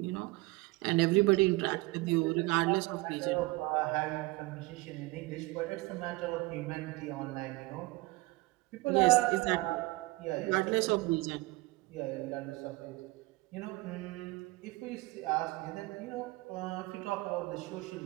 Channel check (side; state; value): left; quieter; 22.1 dB